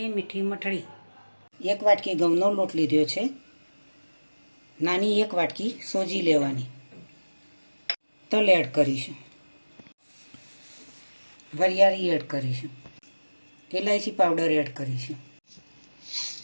મીઠી મઠડી। 1 વાટકી ઘઉંનો લોટ લીધો છે। નાની 1 વાટકી સોજી લેવાની। તલ એડ કરીશું, વરિયાળી એડ કરીશું, ઇલાયચી પાવડર એડ કરીશું,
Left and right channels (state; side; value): inverted; both; correlation -1.00